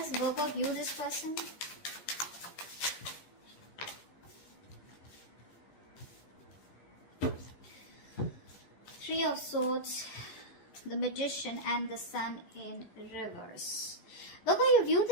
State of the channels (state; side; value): late; right; 14 ms